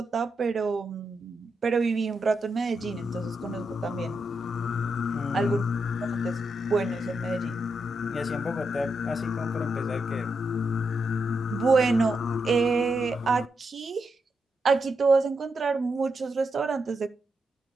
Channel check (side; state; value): both; normal; correlation 0.84